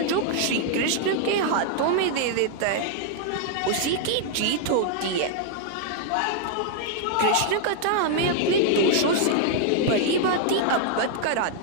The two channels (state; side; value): different; both; correlation 0.00